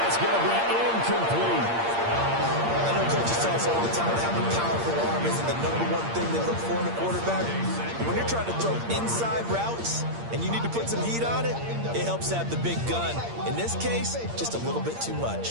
going to be incomplete. I know coaches tell us all the time having a powerful arm isn't the #1 thing they look for in a quarterback. When you're trying to throw inside routes and you need to put some heat on it, it helps to have the big gun. In this case, just a little bit too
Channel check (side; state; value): left; late; 8.7 ms